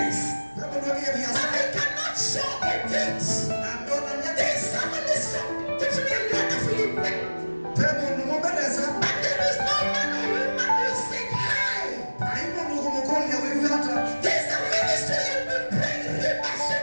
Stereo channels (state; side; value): inverted; both; correlation -1.00